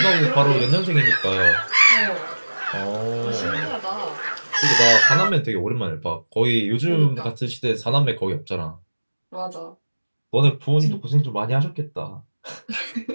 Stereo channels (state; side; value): inverted; both; correlation -1.00